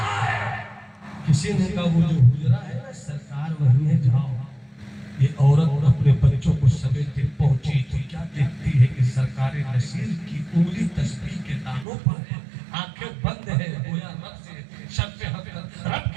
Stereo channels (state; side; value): drops out; left; at 11.9 s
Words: ہے. کسی نے کہا وہ جو حجرہ ہے نا سرکار وہیں ہے, جاؤ. یہ عورت اپنے بچوں کو سمیٹے پہنچی تو کیا دیکھتی ہے کہ سرکار نصیر کی انگلی تسبیح کے دانوں پر ہے, آنکھیں بند ہے, گویا رب سے شرف حق, رب